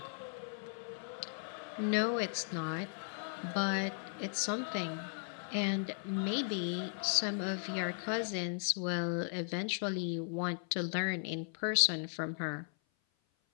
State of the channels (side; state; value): right; silent; 53 dB below the other